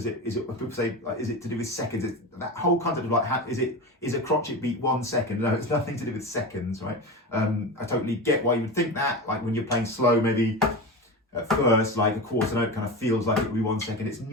say, like, is it to do with seconds? That whole concept of like, is a crotchet beat 1 second? No, it's nothing to do with seconds, right? I totally get why you would think that, like when you're playing slow, maybe at first, like a quarter note kind of feels like it would be 1 second. It's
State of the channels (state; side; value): normal; both; correlation 0.25